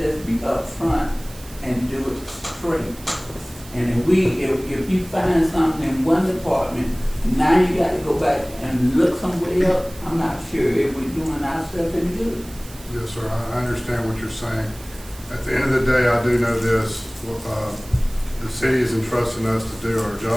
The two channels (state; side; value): noise; right; hiss, 20 dB below the sound